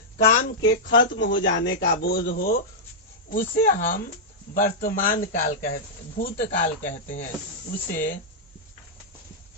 काम के खत्म हो जाने का बोध हो, उसे हम वर्तमान काल कहते, भूतकाल कहते हैं। उसे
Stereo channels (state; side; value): normal; both; correlation -0.08